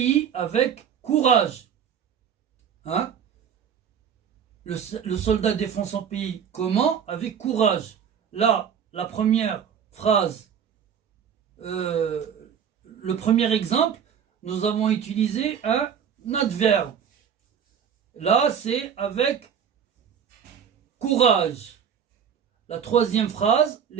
avec courage. Hein? Le soldat défend son pays comment? Avec courage. Là, la première phrase, le premier exemple, nous avons utilisé un adverbe. Là, c'est avec courage. La troisième phrase,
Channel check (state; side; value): quieter; left; 8.0 dB